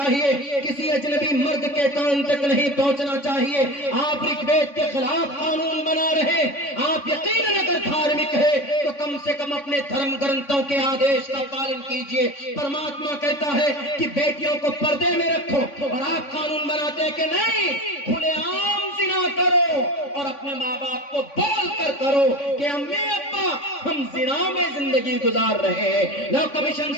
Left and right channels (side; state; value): right; late; 3.5 ms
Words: کسی اجنبی مرد کے کان تک نہیں پہنچنا چاہیے۔ آپ رگ وید کے خلاف قانون بنا رہے، آپ یقیناً اگر دھارمک ہے تو کم سے کم اپنے دھرم گرنتھوں کے آدیش کا پالن کیجیے۔ پرماتما کہتا ہے کہ بیٹیوں کو پردے میں رکھو، اور آپ قانون بناتے ہیں کہ نہیں، کھلے عام زنا کرو، اور اپنے ماں باپ کو بول کر کرو کہ امی ابا ہم زنا میں زندگی گزار رہے ہیں۔ لو کمیشن